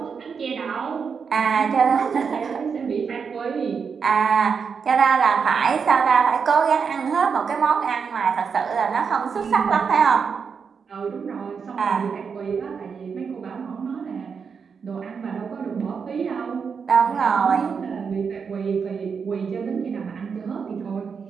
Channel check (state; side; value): quieter; left; 6.0 dB